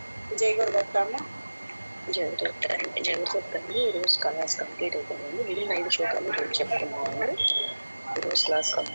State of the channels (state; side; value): inverted; both; correlation -1.00